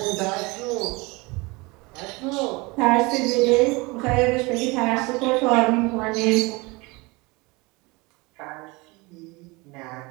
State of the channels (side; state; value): left; quieter; 25.2 dB